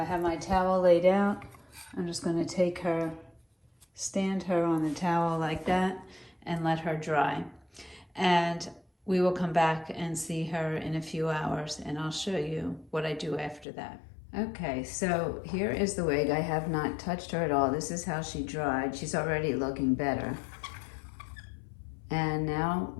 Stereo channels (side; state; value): right; drops out; at 13.7 s